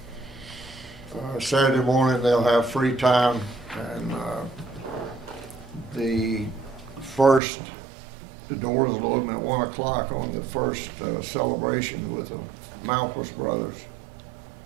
Saturday morning they'll have free time, and the doors will open at 1 o'clock on the first celebration with the Malpas brothers,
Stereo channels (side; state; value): left; drops out; at 7.4 s